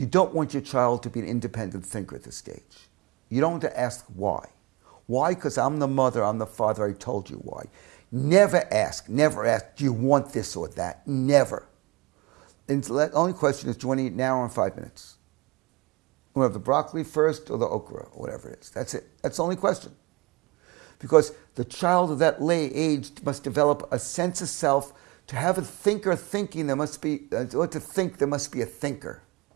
don't want your child to be an independent thinker at this stage. You don't want to ask why. Why? Because I'm the mother, I'm the father, I told you why. Never ask, do you want this or that? Never. And the only question is, do you want to eat now or in 5 minutes? You want to have the broccoli first or the okra, or whatever it is. That's it. That's the only question. Because the child of that age must develop a sense of self. To have a thinker thinking, there must be, or to think, there must be a thinker.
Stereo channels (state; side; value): quieter; left; 24.9 dB